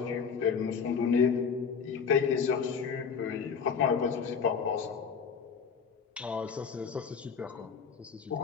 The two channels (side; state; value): right; quieter; 6.2 dB